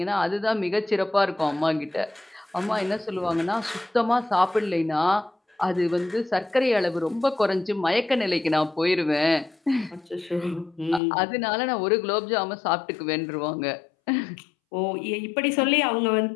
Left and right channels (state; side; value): drops out; right; at 11.0 s